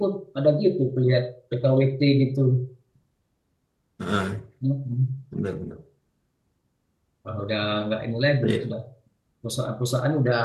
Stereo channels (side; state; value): both; identical; correlation 1.00